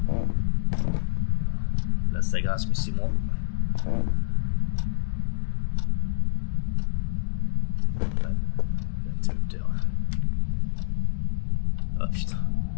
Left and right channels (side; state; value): right; silent; 61 dB below the other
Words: Là ça grince mais c'est moi. L'interrupteur. Ah putain.